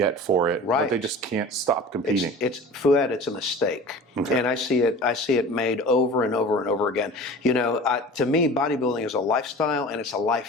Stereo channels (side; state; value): both; normal; correlation 0.39